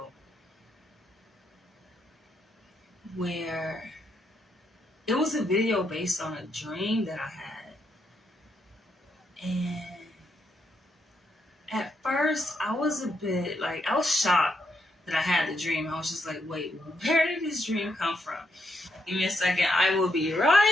where it was a video based on a dream that I had. And at first, I was a bit like, I was shocked that I had the dream. I was just like, wait, where did this dream come from? Give me a second. I will be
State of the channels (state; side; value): normal; both; correlation 0.79